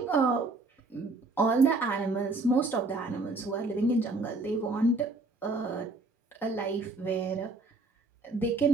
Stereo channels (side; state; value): left; quieter; 3.3 dB